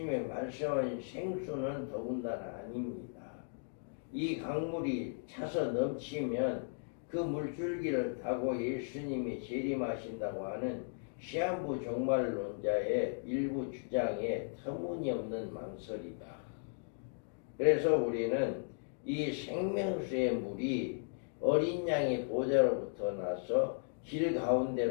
말씀하신 생수는 더군다나 아닙니다. 이 강물이 차서 넘치면 그 물줄기를 타고 예수님이 재림하신다고 하는 시한부 종말론자의 일부 주장에 터무니없는 망설이다. 그래서 우리는 이 생명수의 물이 어린 양의 보좌로부터 나서 길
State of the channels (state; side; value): silent; right; digital silence